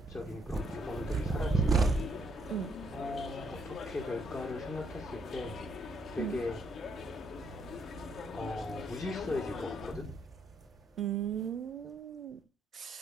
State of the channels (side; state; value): both; normal; correlation 0.72